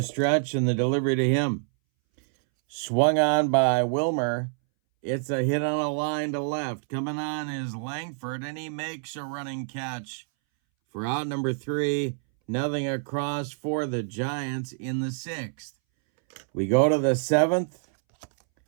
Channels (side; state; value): left; silent; 60 dB below the other